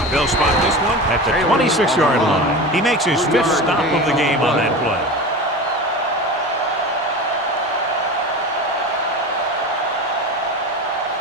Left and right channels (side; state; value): both; normal; correlation 0.29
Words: They'll spot this one at the 26-yard line. He makes his 5th stop of the game on that play.